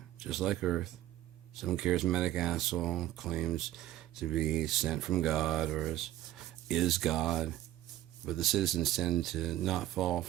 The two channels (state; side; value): quieter; left; 13.9 dB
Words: just like Earth. Some charismatic asshole claims to be sent from God or is God, but the citizens tend to not fall